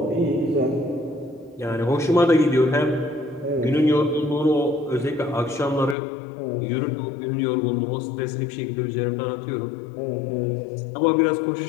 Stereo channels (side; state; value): right; drops out; at 6.0 s